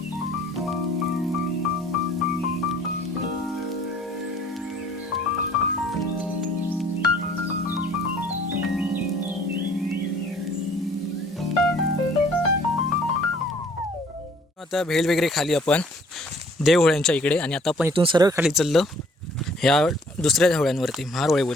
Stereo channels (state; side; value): normal; both; correlation 0.57